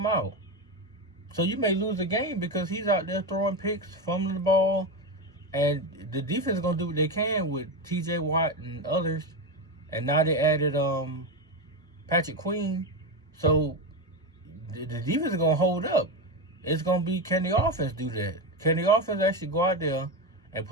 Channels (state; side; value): normal; both; correlation 0.14